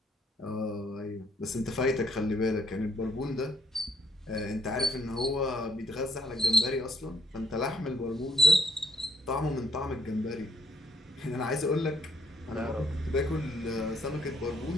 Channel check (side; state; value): both; normal; correlation 0.69